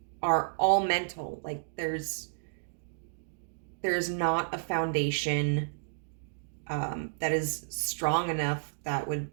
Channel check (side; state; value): left; silent; digital silence